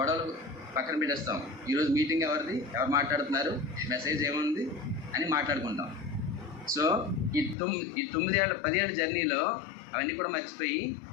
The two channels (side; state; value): right; drops out; at 7.6 s